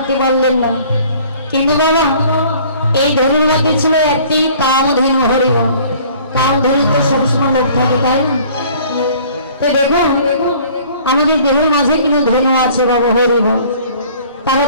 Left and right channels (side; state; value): both; inverted; correlation -0.52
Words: পারলেন না। কিন্তু বাবা, এই ধনুর মধ্যে ছিল একটি কামধেনু হরিব। কামধেনু তো সবসময় লোক থাকে, তাই না? তো দেখুন, আমাদের দেহের মাঝে কিন্তু ধনু আছে বাবা হরিব। তারা